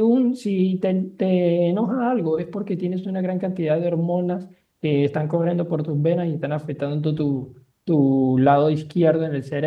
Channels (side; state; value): both; identical; correlation 1.00